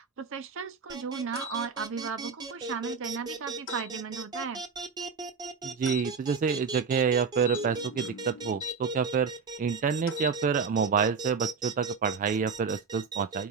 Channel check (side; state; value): left; quieter; 5.5 dB